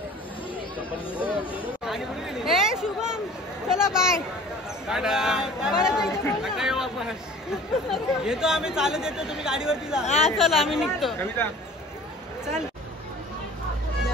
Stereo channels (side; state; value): both; normal; correlation 0.46